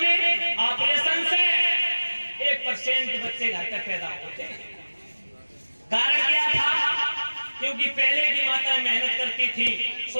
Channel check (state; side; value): inverted; both; correlation -1.00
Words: ऑपरेशन से 1% बच्चे घर पे पैदा होते। कारण क्या था? क्योंकि पहले की माता मेहनत करती थी,